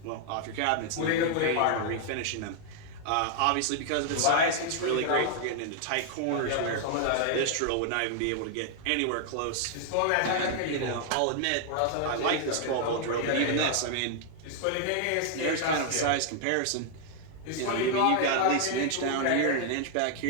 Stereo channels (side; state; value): both; different; correlation 0.00